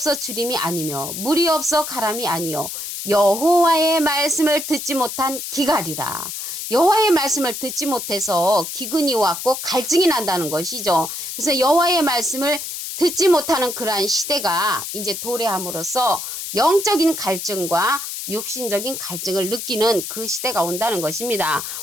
주림이 아니며 물이 없어 가람이 아니요 여호와의 말씀을 듣지 못한 기갈이라. 여호와의 말씀을 듣지 못해서 기근이 왔고 갈증이 난다는 것이죠. 그래서 여호와의 말씀을 듣지 못하는 그러한 시대가 이제 도래함으로써 영적인 갈증과 육신적인 갈증을 느끼는 그 시대가 온다는 것입니다.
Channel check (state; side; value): noise; left; hiss, 6 dB below the sound